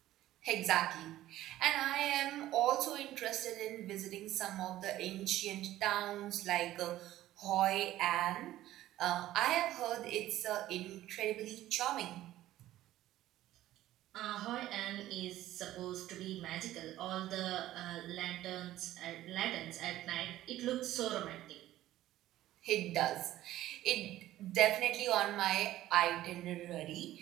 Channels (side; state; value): left; quieter; 14.4 dB